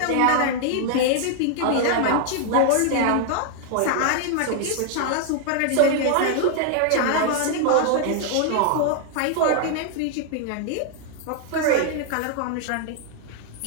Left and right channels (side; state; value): both; different; correlation 0.00